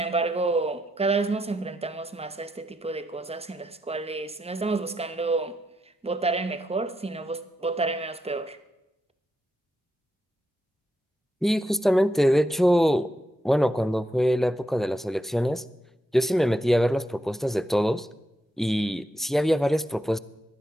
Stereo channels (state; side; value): normal; both; correlation 0.83